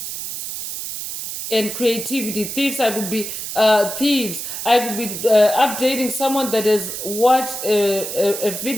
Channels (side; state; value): right; noise; hiss, 6 dB below the sound